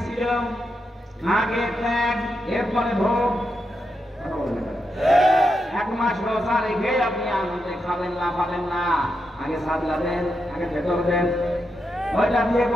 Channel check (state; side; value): normal; both; correlation 0.85